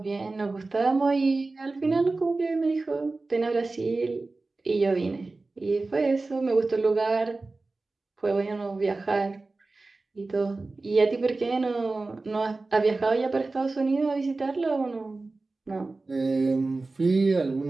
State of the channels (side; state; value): left; quieter; 3.4 dB